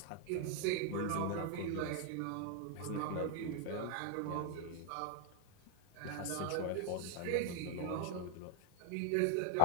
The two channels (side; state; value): both; different; correlation 0.00